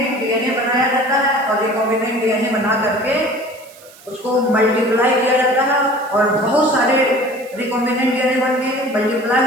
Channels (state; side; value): noise; right; hiss, 23 dB below the sound